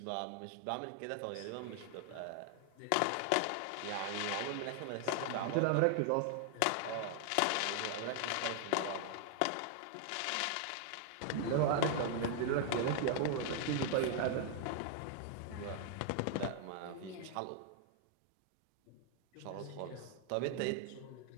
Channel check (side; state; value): both; different; correlation 0.00